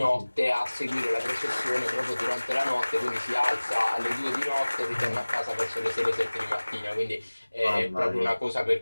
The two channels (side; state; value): both; inverted; correlation -1.00